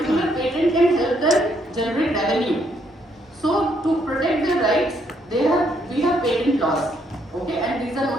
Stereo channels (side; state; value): both; normal; correlation 0.72